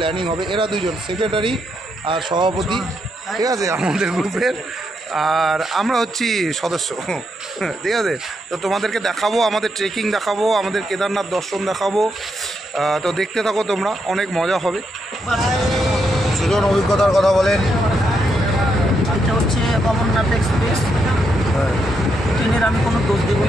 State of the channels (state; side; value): normal; both; correlation 0.80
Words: হবে। এরা দুইজন সেক্রেটারি আর সভাপতি, ঠিক আছে আমাদের গ্রুপের, আর আমরা হচ্ছি সদস্য, ঠিক আছে। তো তোমাদেরকে দেখাবো, আমাদের ট্রেকিং দেখাবো, আমাদের কেদারনাথ দর্শন দেখাবো। তো দেখতে থাকো তোমরা, অনেক মজা হবে। সুজন অভিজ্ঞতার কথা বলেন। এটা হচ্ছে অমরনাথ এক্সপ্রেস। ট্রেনের আমি কোনো দোষ দেবো